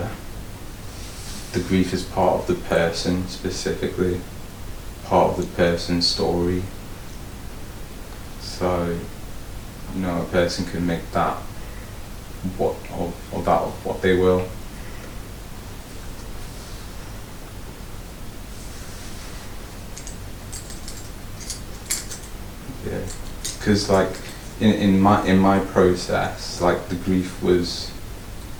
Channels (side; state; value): both; identical; correlation 1.00